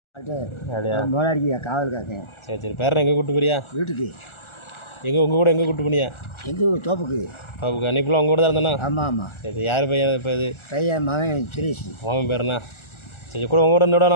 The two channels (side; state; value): right; late; 1.4 ms